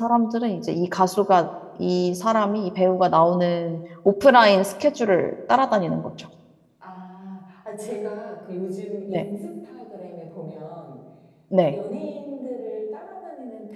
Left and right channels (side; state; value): both; identical; correlation 1.00